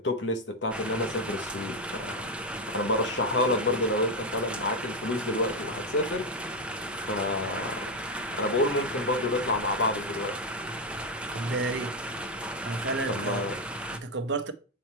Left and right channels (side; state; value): both; normal; correlation 0.08